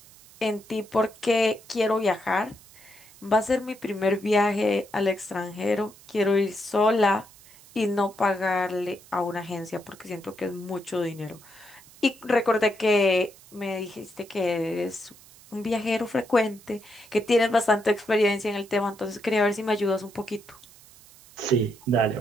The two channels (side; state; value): right; noise; hiss, 23 dB below the sound